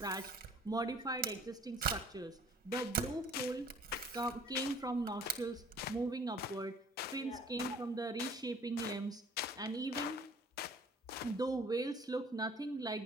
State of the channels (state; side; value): normal; both; correlation 0.53